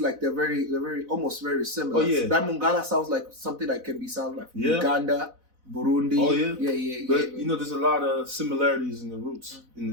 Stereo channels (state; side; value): late; left; 4.0 ms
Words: like they're very almost very similar. Oh, yeah. That Mungala sounds like something that can be sound like Uganda, Burundi. Oh yeah, yeah. But there's a lot of similarities in the roots